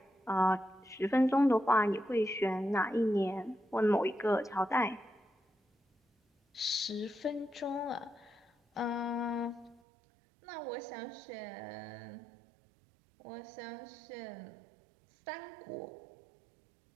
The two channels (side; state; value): left; drops out; at 9.8 s